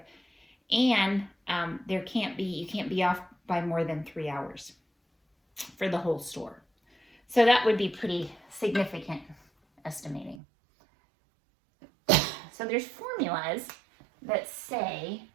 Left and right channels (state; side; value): drops out; left; at 10.4 s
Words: And you can't be off by more than 3 hours for the whole store. So that would be pretty significant estimating. So there's formulas that say